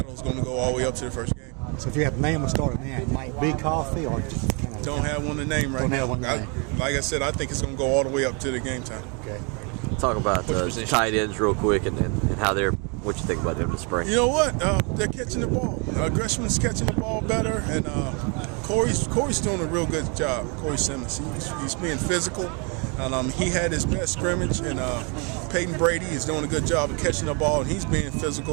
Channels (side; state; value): left; quieter; 34.2 dB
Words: is going to go all the way up to the first game. So if you have a name of starting now, it might be Coffey, or just kind of don't have one to name right now. Like I said, I think it's going to go all the way up to the game time. Okay. Talk about tight ends real quick and how they're. What you think about them this spring? You know what? They're catching the ball. Greshman's catching the ball better, and Corey's doing a real good job. Corey Simmons, he's being physical, and he had his best scrimmage. And Peyton Brady is doing a good job of catching the ball, and he's being